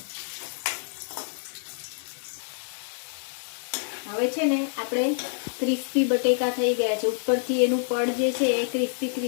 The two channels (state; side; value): silent; right; digital silence